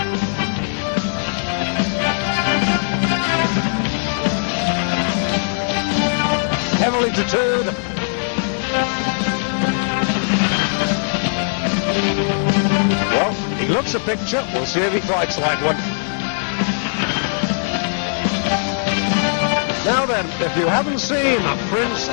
Heavily tattooed. Well, he looks a picture. We'll see if he fights like one. Now then, if you haven't seen Prince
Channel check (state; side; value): silent; right; 64 dB below the other